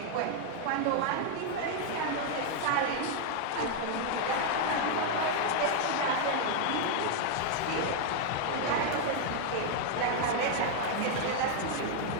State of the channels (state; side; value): different; both; correlation 0.00